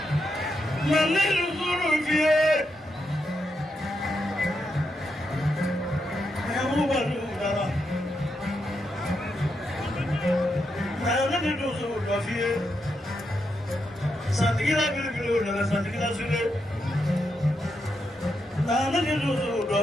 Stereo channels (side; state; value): both; normal; correlation 0.83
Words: Santikila sule, nana kilusu